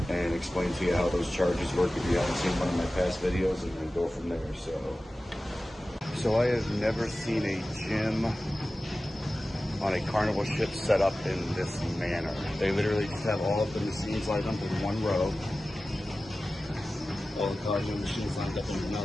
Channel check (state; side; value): normal; both; correlation 0.96